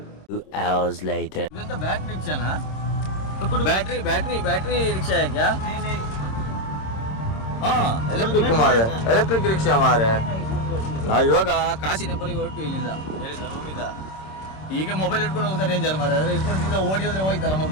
2 hours later. ಇದಂತ ಬ್ಯಾಟ್ರಿ ರಿಕ್ಷಾನಾ? ಬ್ಯಾಟ್ರಿ ರಿಕ್ಷಾ है क्या? हाँ, ಎಲೆಕ್ಟ್ರಿಕ್ ರಿಕ್ಷಾ ಮಾರೆ. ನಾವು ಇವಾಗ ಕಾಶಿ ಟೆಂಪಲ್ಗೆ ಹೊರಟು ಇಲ್ಲಿಂದ ರೂಮಿಂದ. ಈಗ ಮೊಬೈಲ್ ಇಟ್ಕೊಂಡು ಹೋಗ್ತಾರೆ ಡೇಂಜರ್ ಮಾರೆ. ಅದ್ರ ಇಟ್ಕೊಂಡು ಸೀದಾ ಓಡಿ ಹೋದ್ರೆ ಹೋಯ್ತಲ್ಲ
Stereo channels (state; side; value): late; right; 26 ms